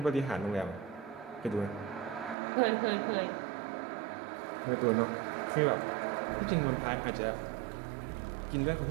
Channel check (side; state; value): left; drops out; at 2.4 s